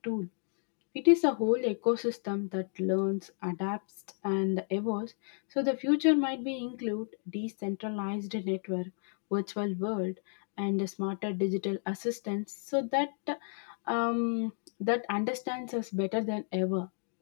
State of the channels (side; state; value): right; silent; 56 dB below the other